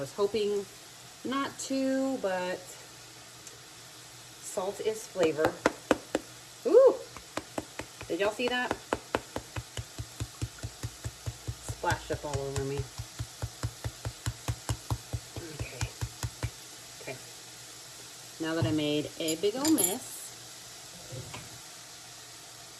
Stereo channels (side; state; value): both; identical; correlation 1.00